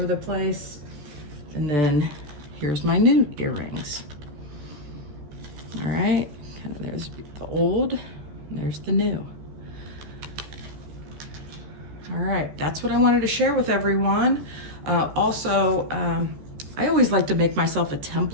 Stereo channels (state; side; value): late; left; 14 ms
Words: the place. And then here's my new earrings. All right, there's the old, and there's the new. All right, that's what I wanted to share with everyone. Also, I always like to make myself a